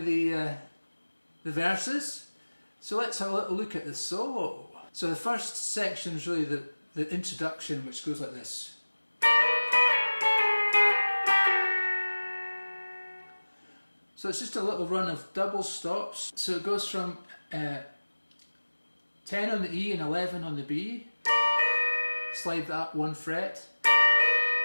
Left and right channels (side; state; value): both; inverted; correlation -1.00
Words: the verses. So let's have a little look at the solo. So the first section is really the introduction, which goes like this. So it's just a little run of double stops. So it goes from 10 on the E and 11 on the B. Slide that up 1 fret.